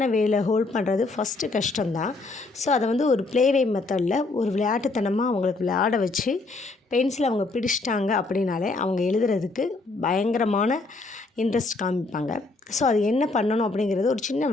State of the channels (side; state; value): right; quieter; 3.4 dB